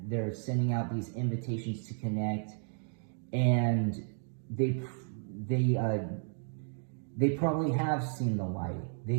sending out these invitations to connect, and they probably have seen the light.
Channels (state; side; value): silent; left; 56 dB below the other